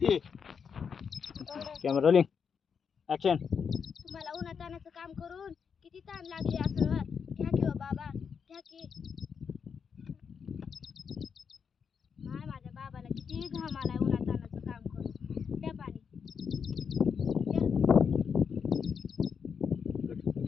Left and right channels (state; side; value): quieter; right; 6.5 dB